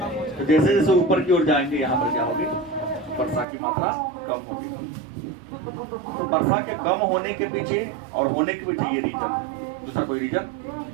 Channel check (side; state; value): left; drops out; at 3.5 s